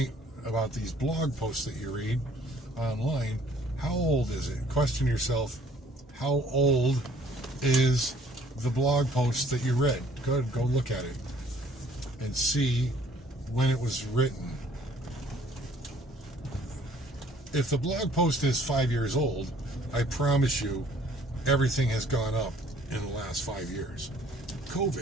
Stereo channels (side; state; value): both; normal; correlation 0.58